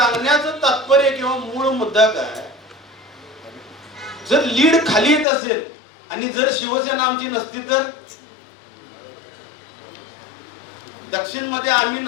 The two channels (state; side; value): drops out; right; at 5.2 s